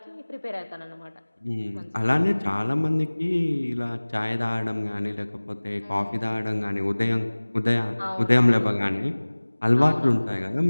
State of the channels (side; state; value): both; inverted; correlation -1.00